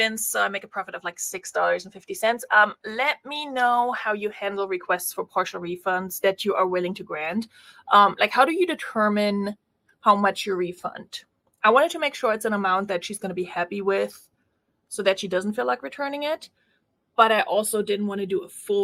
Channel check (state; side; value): identical; both; correlation 1.00